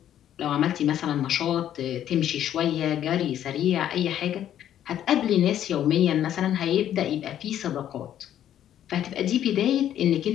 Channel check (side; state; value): right; quieter; 10.9 dB